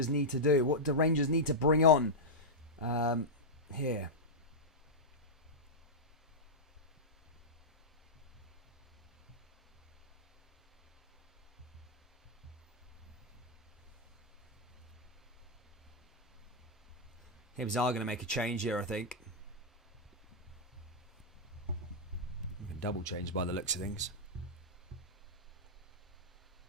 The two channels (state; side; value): normal; both; correlation -0.08